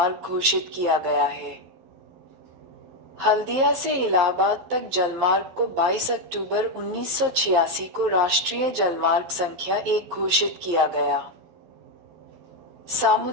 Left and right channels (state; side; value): late; left; 12 ms